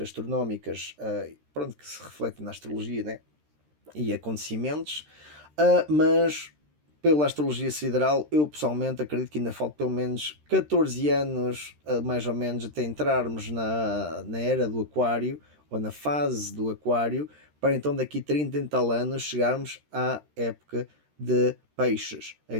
pronto, que se refletem na astrologia, né? E acontecimentos, mas pela astrologia sideral, eu pessoalmente acredito que ainda falta pelo menos 14 anos, mais ou menos, até entrarmos na era do aquário, ou na fase do aquário, para então daqui 30 e tal anos chegarmos à época de peixes.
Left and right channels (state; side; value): late; left; 13 ms